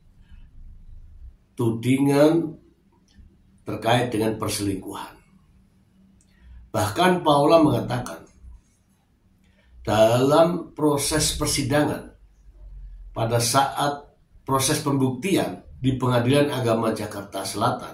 tudingan terkait dengan perselingkuhan. Bahkan Paula mengatakan dalam proses persidangan pada saat proses pembuktian di Pengadilan Agama Jakarta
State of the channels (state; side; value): identical; both; correlation 1.00